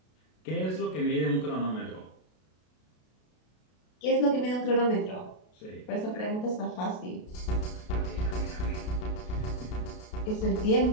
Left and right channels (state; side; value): late; right; 32 ms